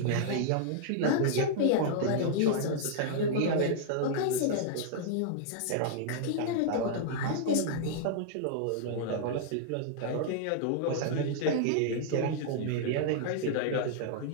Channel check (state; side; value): different; both; correlation -0.01